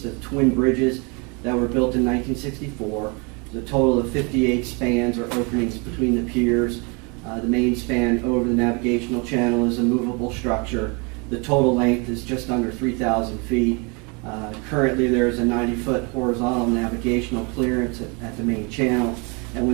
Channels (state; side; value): quieter; left; 31.4 dB